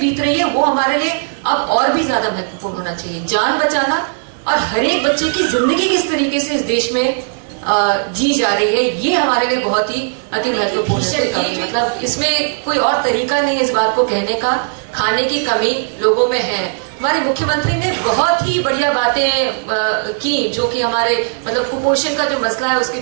रही है वो हमारे लिए अब और भी ज्यादा महत्वपूर्ण होना चाहिए। जान बचाना और हर एक बच्चे की जिंदगी किस तरीके से इस देश में जी जा रही है, ये हमारे लिए बहुत ही अति महत्वपूर्ण है। मतलब इसमें कोई और तरीका नहीं है इस बात को कहने का। खाने की कमी लोगों में है। हमारे मुख्यमंत्री ने बहुत ही बढ़िया बातें की, जो कि हमारे मतलब कुपोषण का जो मसला है उसके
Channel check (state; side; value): silent; left; 62 dB below the other